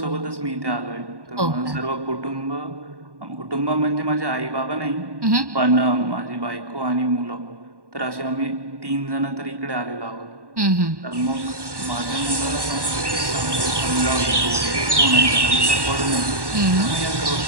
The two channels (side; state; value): left; late; 1.1 ms